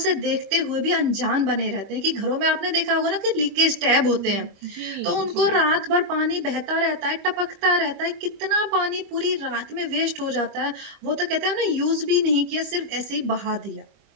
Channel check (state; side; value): late; left; 25 ms